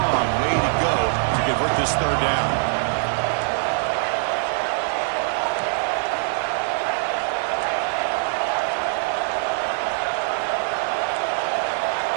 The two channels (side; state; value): left; silent; 63 dB below the other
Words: way to go to convert this third down.